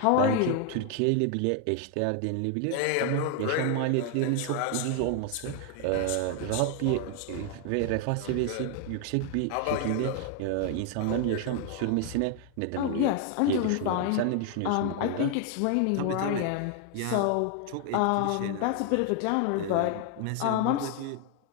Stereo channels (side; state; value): both; different; correlation 0.00